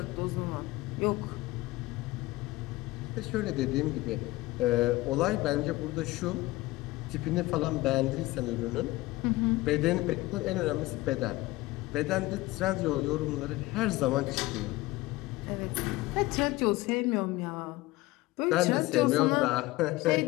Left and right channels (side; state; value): right; quieter; 19.3 dB